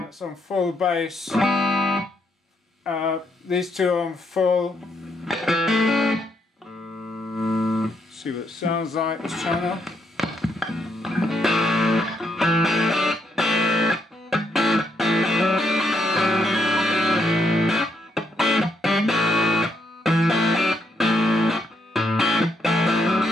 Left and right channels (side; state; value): both; normal; correlation 0.76